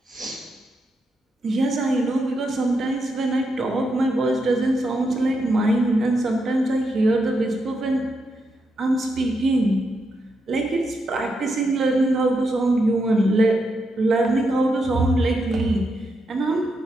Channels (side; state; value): both; normal; correlation 0.83